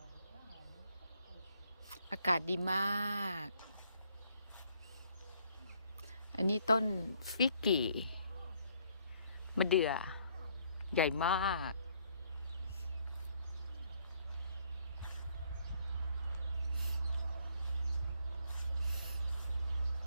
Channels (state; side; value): inverted; both; correlation -0.67